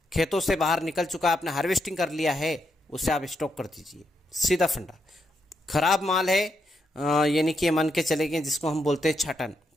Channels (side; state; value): both; normal; correlation 0.81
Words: खेतों से बाहर निकल चुका है, आपने हार्वेस्टिंग कर लिया है, उसे आप स्टॉक कर दीजिए। सीधा फंडा। खराब माल है, यानी कि मान के चले गए जिसको हम बोलते हैं